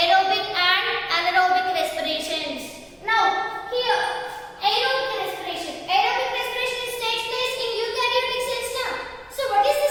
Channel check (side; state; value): both; identical; correlation 1.00